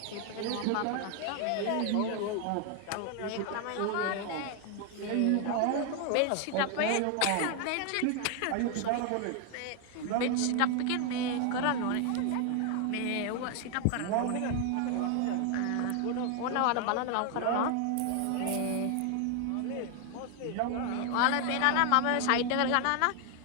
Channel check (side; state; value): both; different; correlation 0.00